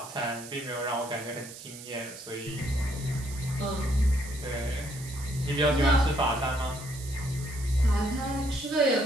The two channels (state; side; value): noise; right; hiss, 14 dB below the sound